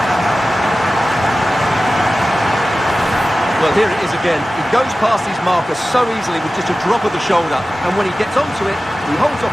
Well, here it is again. He goes past his marker so easily with just a drop of the shoulder. And when he gets onto it, he holds off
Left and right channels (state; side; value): normal; both; correlation 0.95